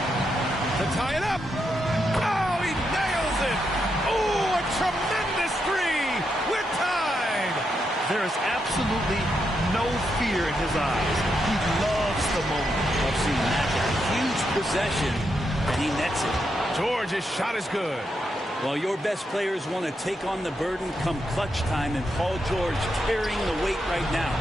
To tie it up. Oh, he nails it. Oh, a tremendous 3. We're tied. There is absolutely no fear in his eyes. He loves the moment. I've seen that. A huge possession, and he nets it. George's shot is good. Well, your best players want to take on the burden come clutch time, and Paul George carrying the weight right now.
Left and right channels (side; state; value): both; normal; correlation 0.82